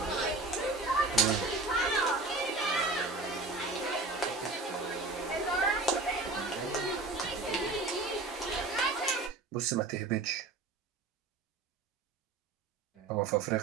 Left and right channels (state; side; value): quieter; left; 3.4 dB